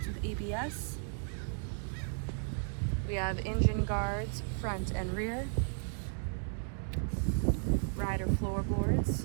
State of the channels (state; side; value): silent; left; 55 dB below the other